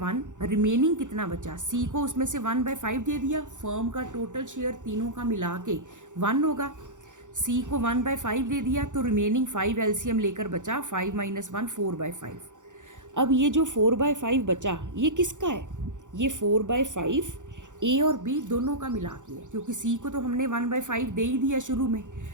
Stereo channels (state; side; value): late; left; 0.86 ms